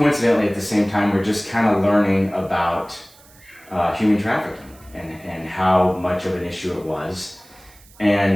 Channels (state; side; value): noise; right; hiss, 26 dB below the sound